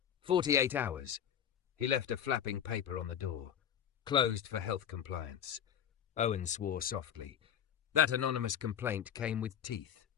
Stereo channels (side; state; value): right; quieter; 9.1 dB